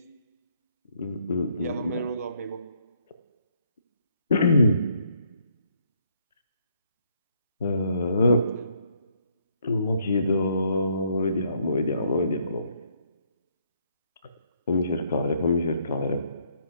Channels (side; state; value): both; inverted; correlation -0.70